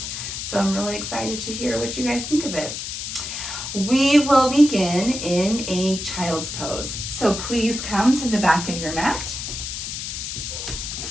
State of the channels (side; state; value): left; noise; hiss, 6 dB below the sound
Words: So I'm really excited to hear what you guys think of it. We will begin in a child's pose. So please come to the back of your mat.